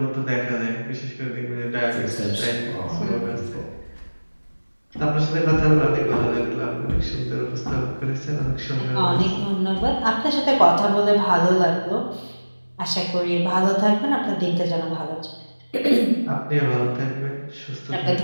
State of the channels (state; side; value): inverted; both; correlation -1.00